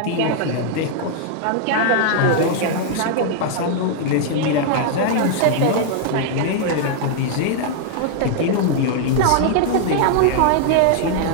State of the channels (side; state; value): both; different; correlation 0.00